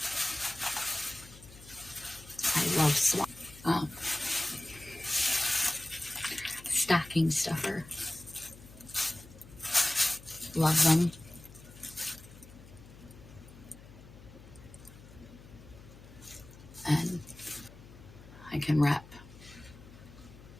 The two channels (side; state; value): left; noise; hum, 19 dB below the sound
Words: I love stocking stuffer. Love them. And I can wrap